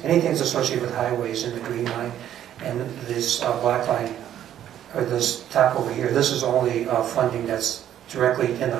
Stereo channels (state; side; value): quieter; left; 11.0 dB